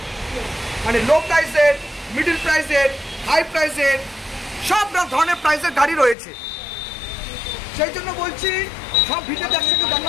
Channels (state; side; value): drops out; right; at 6.2 s